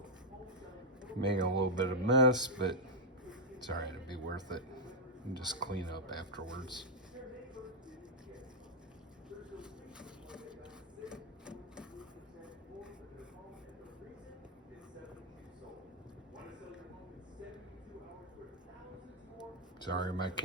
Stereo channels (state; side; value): normal; both; correlation -0.03